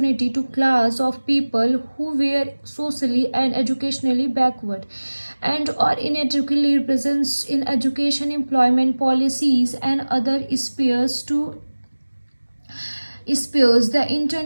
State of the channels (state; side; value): inverted; both; correlation -1.00